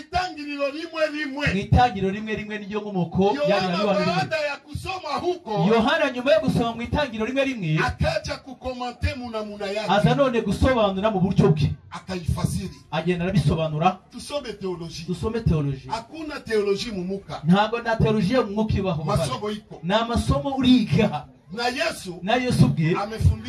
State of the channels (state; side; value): identical; both; correlation 1.00